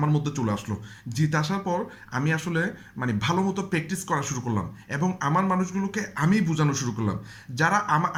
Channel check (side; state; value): both; identical; correlation 1.00